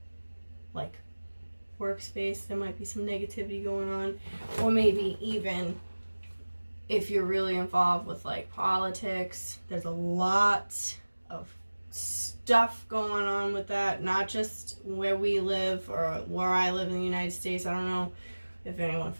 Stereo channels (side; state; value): both; inverted; correlation -1.00